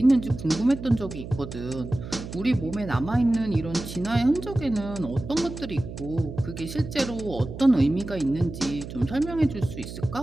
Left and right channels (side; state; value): right; noise; hum, 10 dB below the sound